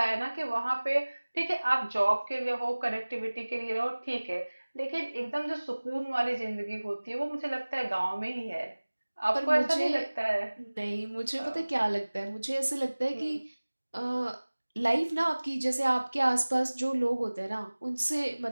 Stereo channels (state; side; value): inverted; both; correlation -1.00